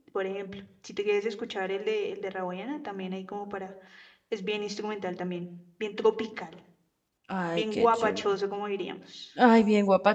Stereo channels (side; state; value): both; identical; correlation 1.00